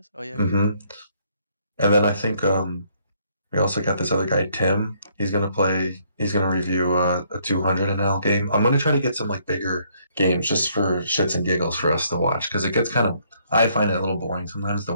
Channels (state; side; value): inverted; both; correlation -0.68